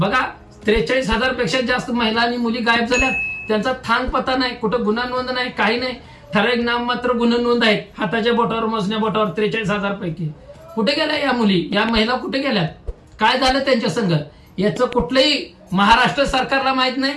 43,000 पेक्षा जास्त महिला आणि मुली गायब झाल्यात. त्यांचा थांग पता नाही, कुठं गुन्हा नोंद नाही, काही नाही. ठराविक नाममात्र गुन्हे नोंद आहेत, हाताच्या बोटावर, मोजण्या बोटावर. 43,000 पैकी कुठे गेल्या या मुली, या महिला कुठे गेल्यात? काय झालं त्यांच्या संग? याचं कुठलंही महाराष्ट्र सरकारला माहित नाही,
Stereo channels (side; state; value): both; identical; correlation 1.00